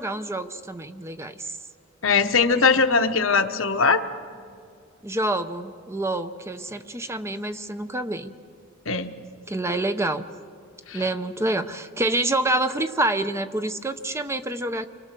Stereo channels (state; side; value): normal; both; correlation 0.16